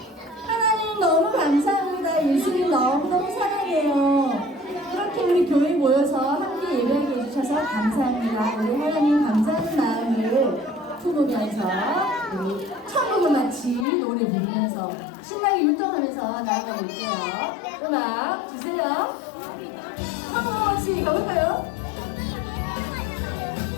하나님 너무 감사합니다. 예수님 너무너무 사랑해요. 이렇게 우리 교회 모여서 함께 예배하게 해주셔서 감사합니다. 우리 하나님 감사하는 마음을 품으면서 우리 천국을 마치 노래 부르면서 신나게 율동하면서 나아가 볼게요. 음악 주세요. 천국을 마치 가볼까요?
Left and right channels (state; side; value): drops out; right; at 13.9 s